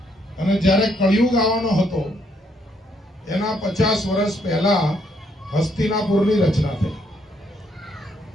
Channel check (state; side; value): normal; both; correlation 0.72